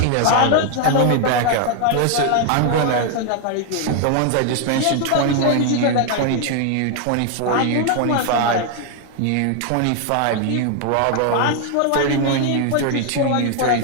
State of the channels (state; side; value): different; both; correlation 0.00